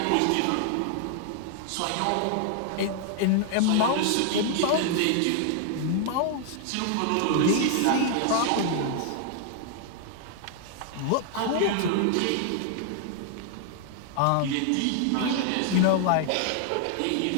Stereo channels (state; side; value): different; both; correlation 0.00